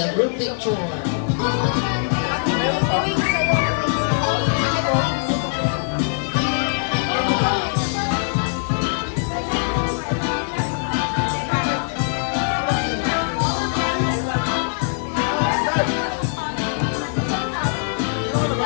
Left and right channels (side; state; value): right; silent; digital silence